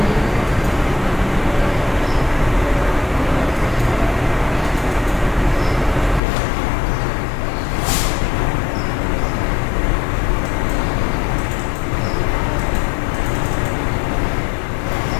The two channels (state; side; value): drops out; right; at 6.2 s